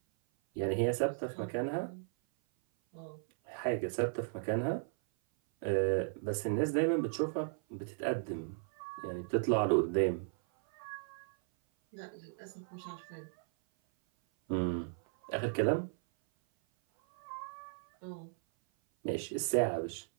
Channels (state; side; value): silent; left; 54 dB below the other